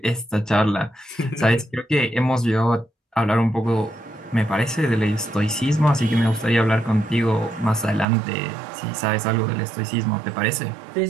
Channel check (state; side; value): drops out; left; at 8.1 s